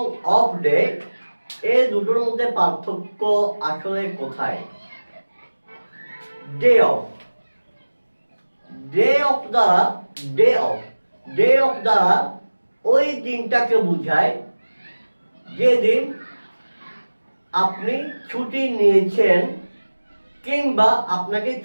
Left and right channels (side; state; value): both; inverted; correlation -1.00